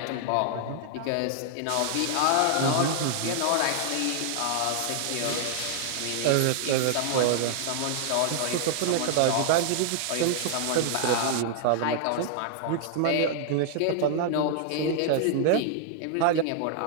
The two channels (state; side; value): different; both; correlation -0.01